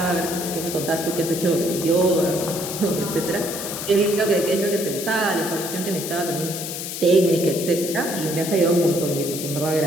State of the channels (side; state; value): left; noise; hiss, 6 dB below the sound